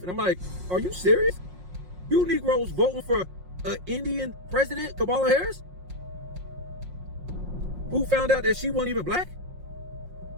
I'm like, are you serious? You Negroes voting for an Indian president, Kamala Harris? Who found out that she wasn't even black?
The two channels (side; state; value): left; late; 5.5 ms